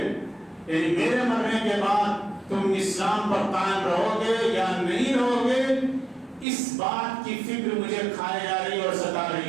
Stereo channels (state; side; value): drops out; left; at 6.5 s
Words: یعنی میرے مرنے کے بعد تم اسلام پر قائم رہو گے یا نہیں رہو گے، اس بات کی فکر مجھے کھائے جا رہی اور ستا